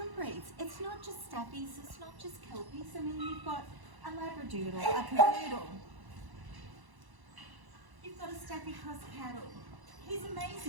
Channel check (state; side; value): late; left; 1.0 ms